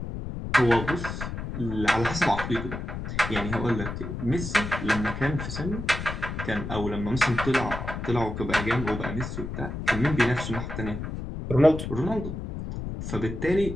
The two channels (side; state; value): left; noise; rumble, 6 dB below the sound